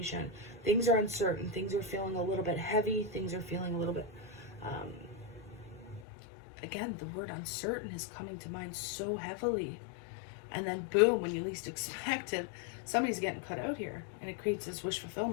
Things are uncertain. Things are feeling a little bit heavy. Things are feeling a little bit... again, the word uncertain is coming to mind so heavily. And then boom, when you least expect it, somebody's getting cut out here. And it creates this wish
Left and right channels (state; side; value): drops out; right; at 6.1 s